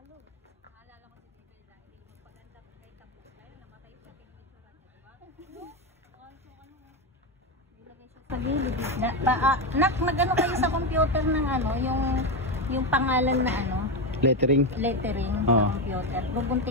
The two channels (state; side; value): normal; both; correlation 0.12